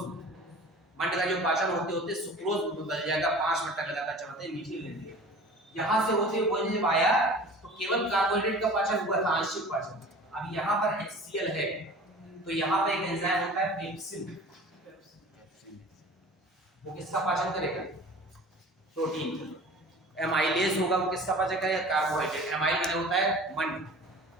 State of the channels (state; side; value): normal; both; correlation 0.42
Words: में। मंड का जो पाचन होते होते सुक्रोज में बदल जाएगा, 5 मिनट तक लगातार चबाते मीठी लगेगी। यहाँ से होते हुए भोजन जब आया तो केवल कार्बोहाइड्रेट का पाचन हुआ था, आंशिक पाचन। अब यहाँ पर HCl है तो यहाँ पर एक एंजाइम होता है पेप्सिन, वो किसका पाचन करेगा, प्रोटीन। एमाइलेज होगा, वो किसका पाचन करेगा, कार्बोहाइड्रेट। एमाइल में होता है मंड।